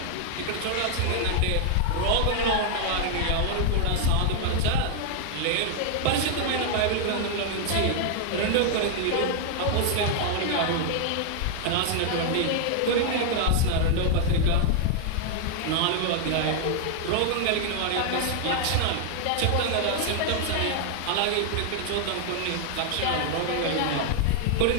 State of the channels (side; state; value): both; different; correlation 0.00